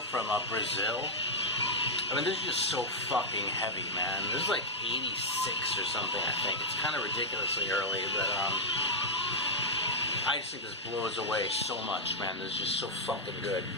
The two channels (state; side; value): normal; both; correlation -0.04